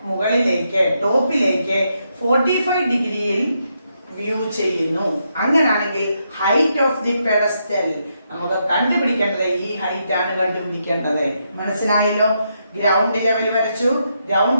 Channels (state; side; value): inverted; both; correlation -0.80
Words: മുകളിലേക്ക് ടോപ്പിലേക്ക് 45 ഡിഗ്രിയിൽ വ്യൂ ചെയ്യുന്നു. അങ്ങനെയാണെങ്കിൽ ഹൈറ്റ് ഓഫ് ദി പെഡസ്റ്റൽ നമുക്ക് കണ്ടുപിടിക്കേണ്ടത് ഈ ഹൈറ്റ് ആണ് കണ്ടുപിടിക്കേണ്ടത്. മനസ്സിലായല്ലോ. ഗ്രൗണ്ട് ലെവൽ വരച്ചു.